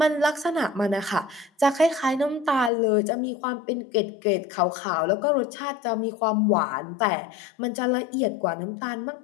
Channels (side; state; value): right; drops out; at 2.7 s